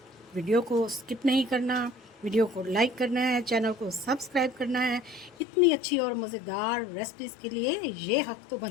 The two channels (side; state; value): right; drops out; at 5.4 s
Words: वीडियो को स्किप नहीं करना, वीडियो को लाइक करना है, चैनल को सब्सक्राइब करना है। इतनी अच्छी और मज़ेदार रेसिपीज़ के लिए ये हक तो